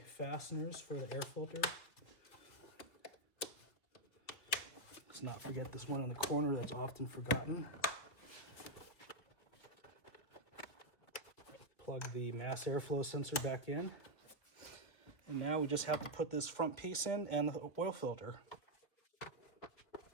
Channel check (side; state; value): right; late; 2.6 ms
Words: fasteners for the air filter. Let's not forget this one in the corner that's often forgotten. Plug the mass airflow sensor back in. And now we just have to put this front piece in and the oil filter.